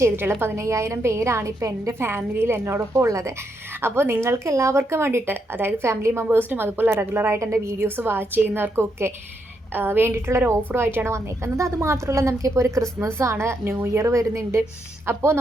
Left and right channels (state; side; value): normal; both; correlation 0.79